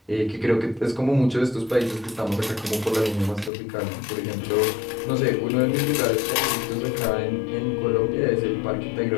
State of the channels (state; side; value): drops out; right; at 3.5 s